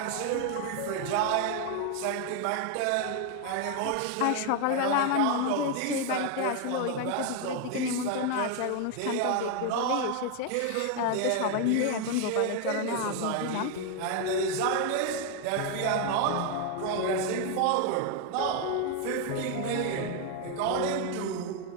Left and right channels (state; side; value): different; both; correlation 0.01